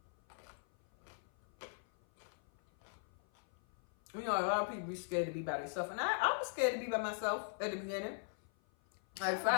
a lot of people be scared to be by themselves. And I was scared to be by myself at the beginning. Like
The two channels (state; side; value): silent; right; 51 dB below the other